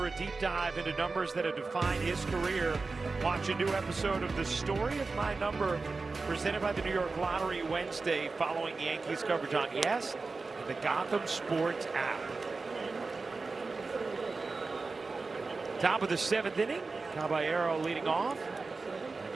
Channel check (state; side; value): quieter; left; 4.0 dB